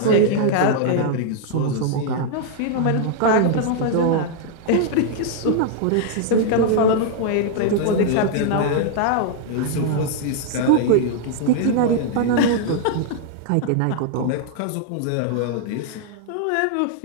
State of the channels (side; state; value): both; different; correlation -0.01